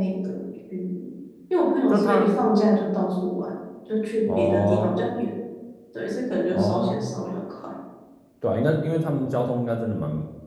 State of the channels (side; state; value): both; identical; correlation 1.00